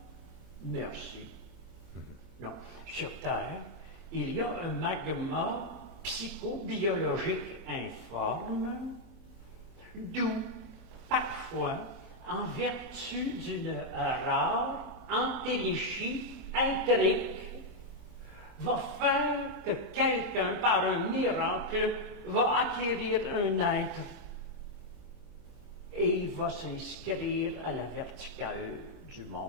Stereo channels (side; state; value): left; noise; hum, 24 dB below the sound